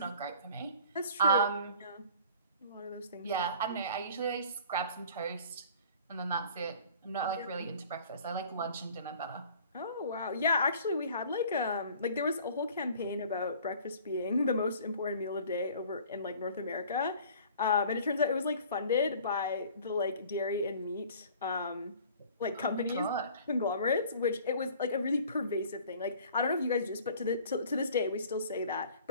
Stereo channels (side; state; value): both; inverted; correlation -0.49